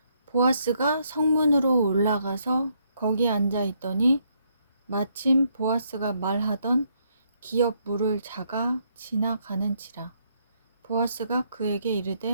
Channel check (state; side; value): inverted; both; correlation -0.73